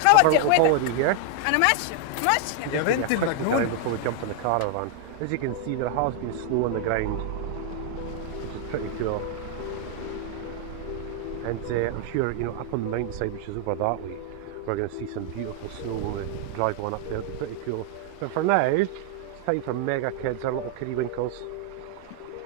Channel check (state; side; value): different; both; correlation 0.00